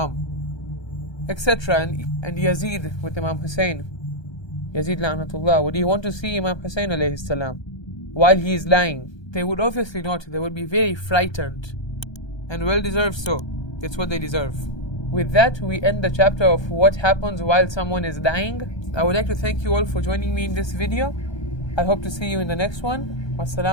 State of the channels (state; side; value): late; right; 1.3 ms